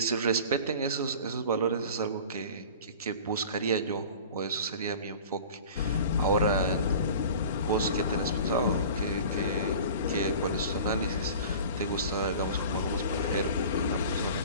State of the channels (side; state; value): both; inverted; correlation -0.40